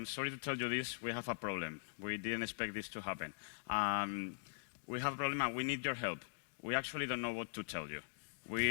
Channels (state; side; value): silent; right; digital silence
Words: sorry to tell you this. We have a problem. We didn't expect this to happen. We have a problem and we need your help. We actually don't know what to tell you.